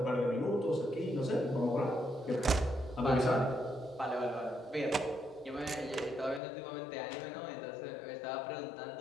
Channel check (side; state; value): right; drops out; at 6.4 s